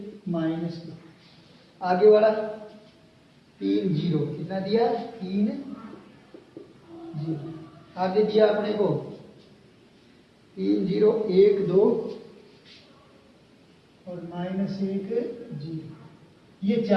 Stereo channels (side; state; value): both; identical; correlation 1.00